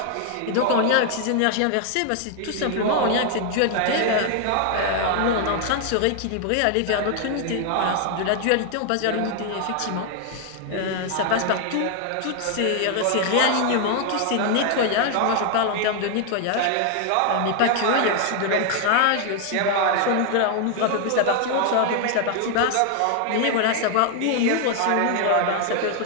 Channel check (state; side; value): different; both; correlation 0.00